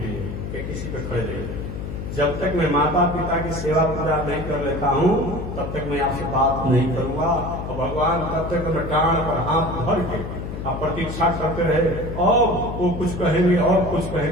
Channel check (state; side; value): noise; left; hum, 7 dB below the sound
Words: कि किसी पे खड़े रहिए, जब तक मैं माता पिता की सेवा पूजा नहीं कर लेता हूं तब तक मैं आपसे बात नहीं करूंगा। और भगवान तब तक मैं डांड पर हाथ धर के आप प्रतीक्षा करते रहे, और वो कुछ कहेंगे और कुछ